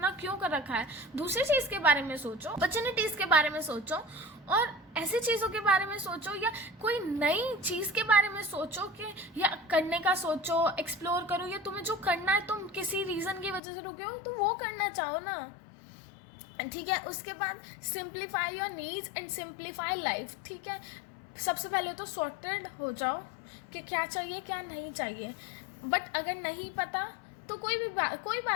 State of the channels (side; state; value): right; drops out; at 13.6 s